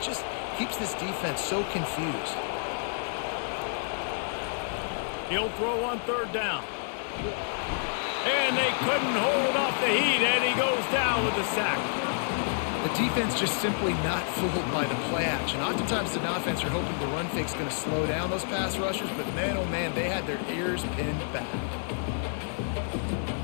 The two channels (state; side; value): silent; right; digital silence